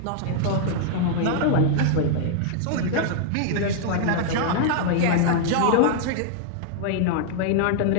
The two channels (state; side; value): different; both; correlation -0.01